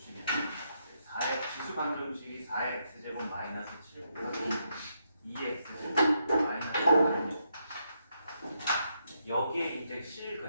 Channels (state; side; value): inverted; both; correlation -0.79